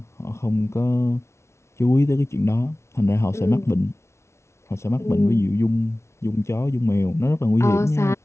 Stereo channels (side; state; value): right; late; 0.13 ms